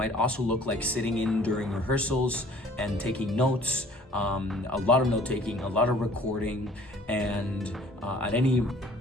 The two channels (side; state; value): both; normal; correlation 0.53